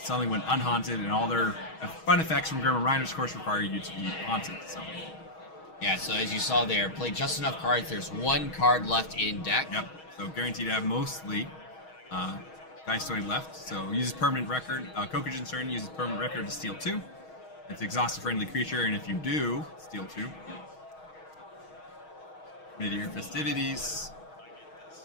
went unhaunted, and all their fun effects from Grim and Reiner's course require you to be haunted. So yeah, so as you saw there, play just enough cards. There's 1 card left in deck. Yep. So guaranteed to have mostly Geistoid left. So uses permanent record. Kokujin's turn uses permanent record to steal 2. It's exhaust a friendly creature, and if you do, steal 2. Mid-year festivities,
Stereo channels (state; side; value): late; right; 6.3 ms